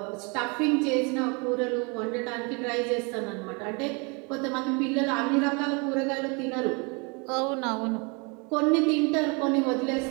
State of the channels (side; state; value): left; quieter; 31.7 dB